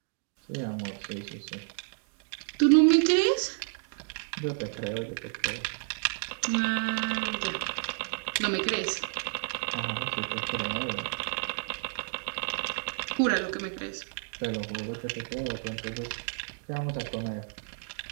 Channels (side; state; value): left; silent; digital silence